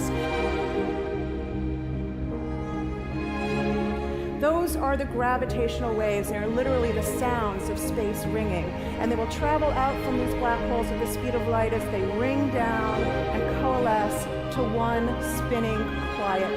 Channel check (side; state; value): both; identical; correlation 1.00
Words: Those are the gravitational waves. They are literally the sounds of space ringing. And they will travel out from these black holes at the speed of light as they ring down and coalesce to one spinning,